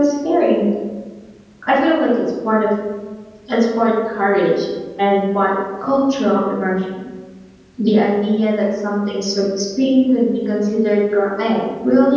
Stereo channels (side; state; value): both; identical; correlation 1.00